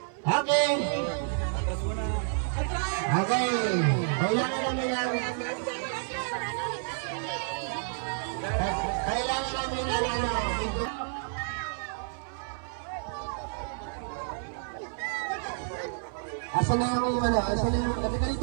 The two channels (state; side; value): silent; left; 58 dB below the other